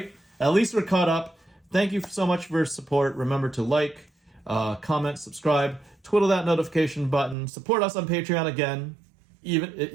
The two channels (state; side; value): drops out; left; at 7.4 s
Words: At least we're caught up. Thank you so much for your support. Remember to like, comment, subscribe, twiddle that notification button. Support us on Patreon again,